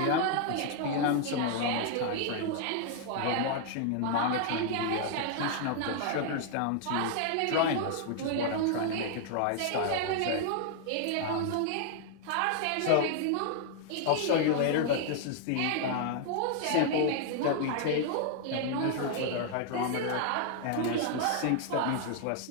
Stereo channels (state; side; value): different; both; correlation 0.00